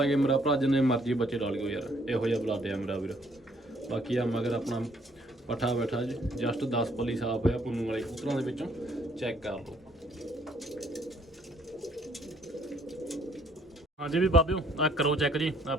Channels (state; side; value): normal; both; correlation 0.65